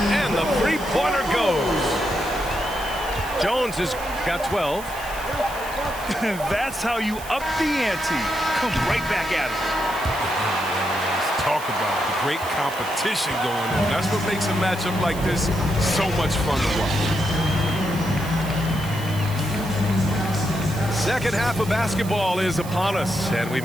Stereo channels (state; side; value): noise; right; hiss, 15 dB below the sound